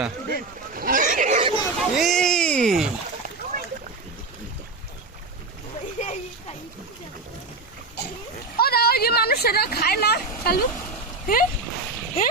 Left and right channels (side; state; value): left; quieter; 3.6 dB